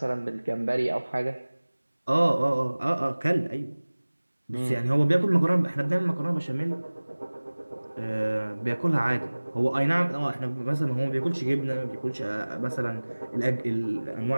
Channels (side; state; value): both; inverted; correlation -1.00